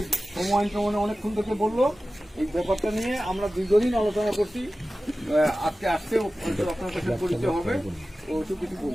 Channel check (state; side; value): normal; both; correlation 0.95